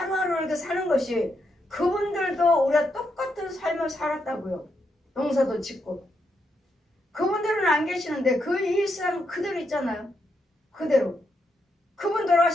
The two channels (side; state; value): both; normal; correlation 0.81